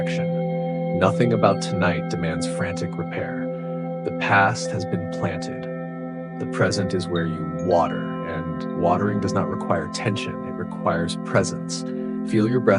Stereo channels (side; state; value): both; identical; correlation 1.00